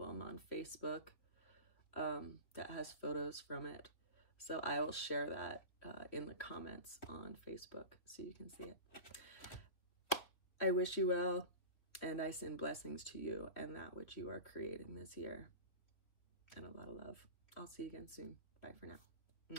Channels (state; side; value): late; right; 2.9 ms